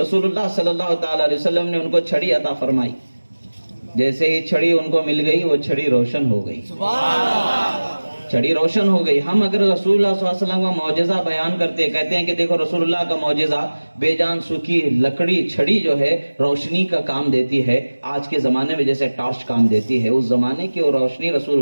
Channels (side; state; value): both; inverted; correlation -1.00